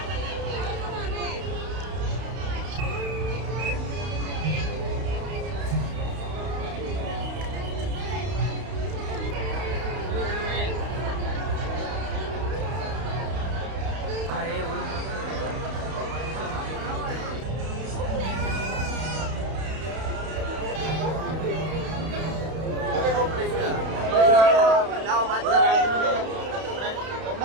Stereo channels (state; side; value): late; left; 31 ms